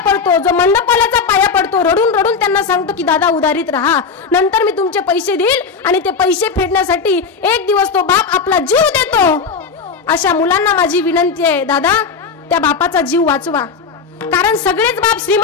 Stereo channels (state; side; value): quieter; right; 5.3 dB